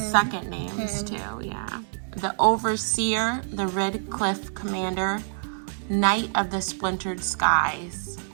names too, yeah. The Overseer, the Red Cliff Commander, Knight of the Splintered Skies.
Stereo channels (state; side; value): silent; left; digital silence